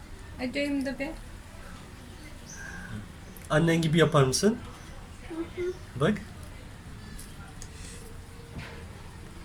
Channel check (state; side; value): identical; both; correlation 1.00